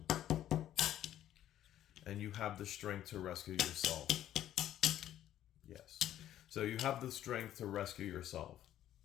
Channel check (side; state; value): right; quieter; 12.0 dB